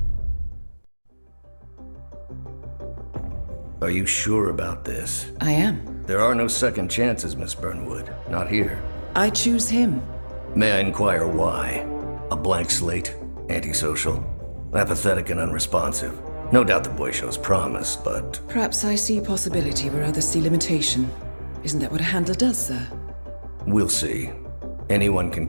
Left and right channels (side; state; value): both; inverted; correlation -1.00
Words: Are you sure about this? I am. There are no second chances, Miss Burnwood. Not here. I choose him. May I inquire why? A blank slate? Antisocial? Apathetic and unresponsive? No doubt the boy shows promise, but... Perhaps I see possibility where others see limitation. Isn't that what a handler does, sir? We'll see. Anyone can